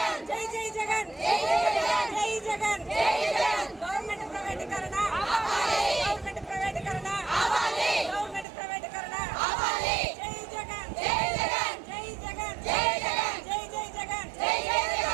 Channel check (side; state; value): left; drops out; at 8.5 s